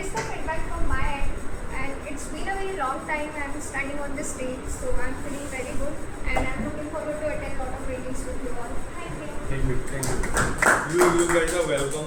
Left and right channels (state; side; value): identical; both; correlation 1.00